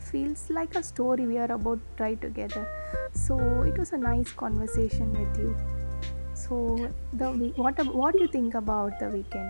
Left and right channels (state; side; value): inverted; both; correlation -1.00